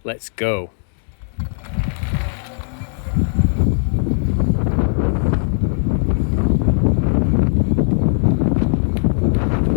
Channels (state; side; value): silent; right; 66 dB below the other